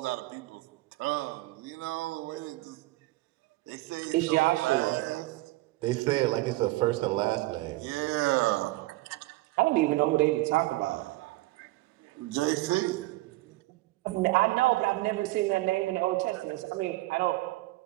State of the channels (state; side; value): quieter; left; 19.3 dB